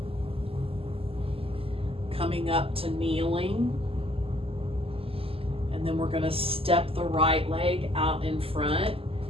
Coming up to kneeling. And then we're going to step the right leg out in front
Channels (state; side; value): late; left; 0.27 ms